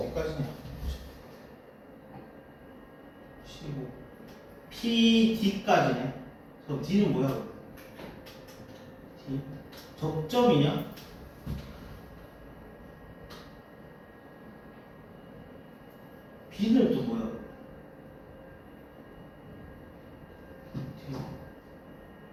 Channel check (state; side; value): identical; both; correlation 1.00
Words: 15 PD까지네. 그럼 D는 뭐야? D 접점이냐? B는 또 뭐야?